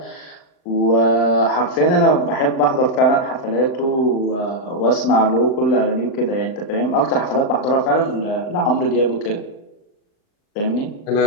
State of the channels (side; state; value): right; late; 39 ms